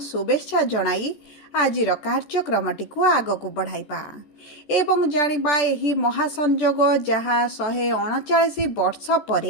शुभेच्छा जणाई आजिर कार्यक्रमटी को आगक बढ़ाइबा एवं जानिबा एही महासंजोग जहाँ 139 वर्ष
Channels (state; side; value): late; right; 14 ms